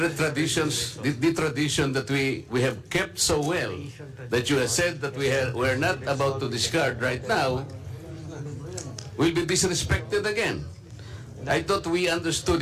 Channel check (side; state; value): both; identical; correlation 1.00